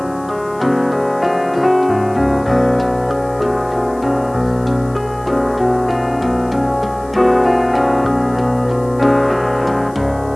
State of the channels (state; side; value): noise; left; hiss, 26 dB below the sound